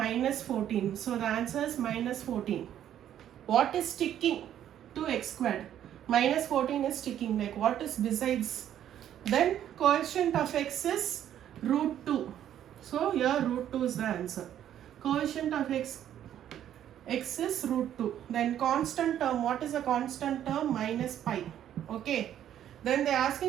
14. So the answer is minus 14. What is sticking to x squared? Minus 14 is sticking. Like what is besides? Then coefficient of x is root 2. So here root 2 is the answer. Coefficient of x is root 2. Then constant term. What is a constant term? Minus pi. Okay. Then they are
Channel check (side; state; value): left; quieter; 10.8 dB